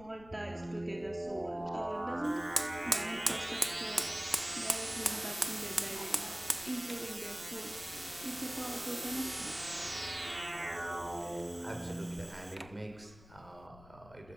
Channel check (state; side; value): noise; left; rumble, 20 dB below the sound